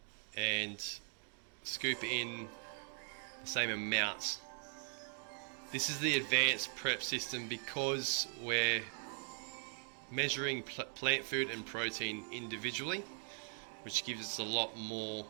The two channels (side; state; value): left; silent; 51 dB below the other